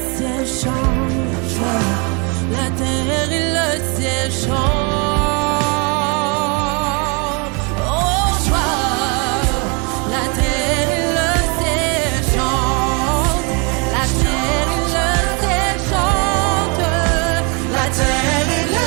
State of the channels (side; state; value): left; quieter; 32.5 dB